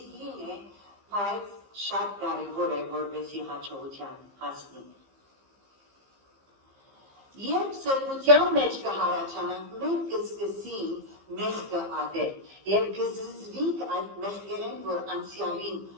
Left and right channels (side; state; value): left; late; 15 ms